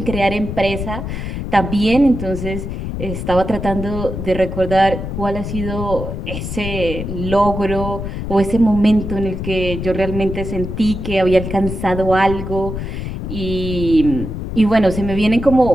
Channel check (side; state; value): left; noise; rumble, 5 dB below the sound